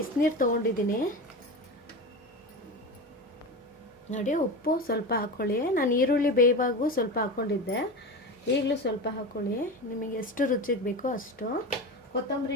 ತೊಗೊಂಡಿದ್ದೀನಿ. ನೋಡಿ ಉಪ್ಪು ಸ್ವಲ್ಪ ಹಾಕ್ಕೊಳ್ಳಿ. ನಾನು ಈರುಳ್ಳಿ ಬೇಯುವಾಗೂ ಸ್ವಲ್ಪ ಹಾಕ್ಕೊಂಡಿದ್ದೆ, ಈಗಲೂ ಸ್ವಲ್ಪ ಹಾಕ್ಕೊಳ್ಳಿ. ನಿಮಗೆ ಎಷ್ಟು ರುಚಿಗೆ ಬೇಕೋ ಅಷ್ಟು.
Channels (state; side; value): normal; both; correlation 0.25